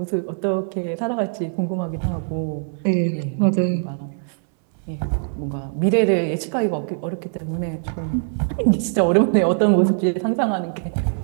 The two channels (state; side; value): silent; left; 64 dB below the other